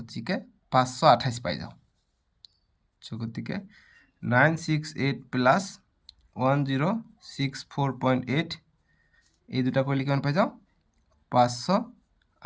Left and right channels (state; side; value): identical; both; correlation 1.00